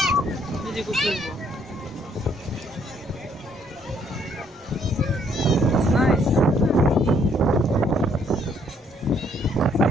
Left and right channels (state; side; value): normal; both; correlation 0.67